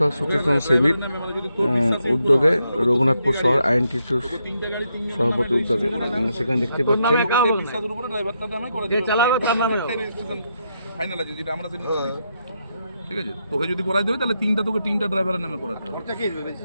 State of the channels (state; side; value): inverted; both; correlation -0.81